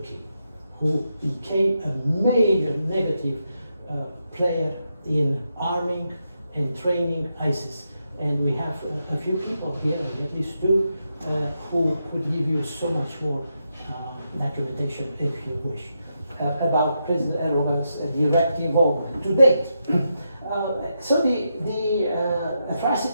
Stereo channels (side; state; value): both; inverted; correlation -0.84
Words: who became a major negative player in arming and training ISIS. And we have a few people here, at least two, who could give you so much more documentation, if you wish, about President Erdogan's direct involvement to date. So the